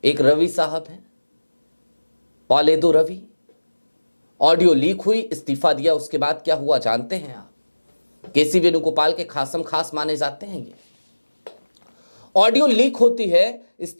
एक रवि साहब हैं, पॉलेदो रवि, ऑडियो लीक हुई, इस्तीफा दिया। उसके बाद क्या हुआ जानते हैं आप? केसी वेणुगोपाल के खासम खास माने जाते हैं। ये ऑडियो लीक होती है,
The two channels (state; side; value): inverted; both; correlation -1.00